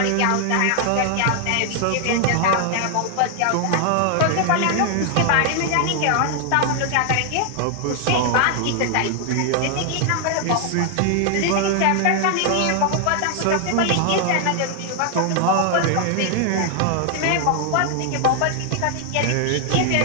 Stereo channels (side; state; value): both; different; correlation 0.00